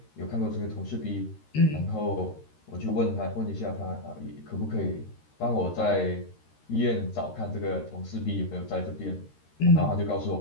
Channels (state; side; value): late; right; 13 ms